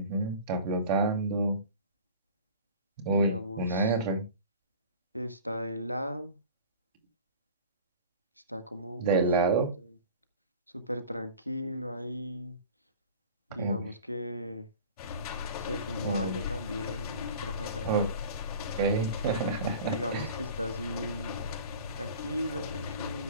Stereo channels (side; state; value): both; inverted; correlation -0.40